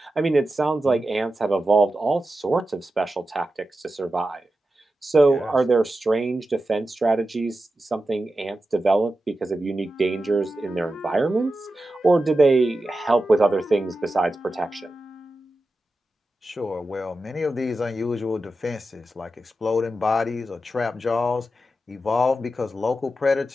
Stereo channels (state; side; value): normal; both; correlation 0.91